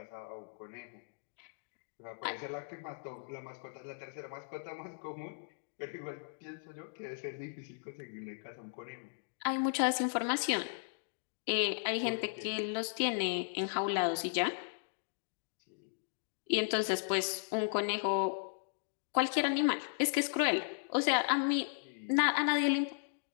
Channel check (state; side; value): silent; right; digital silence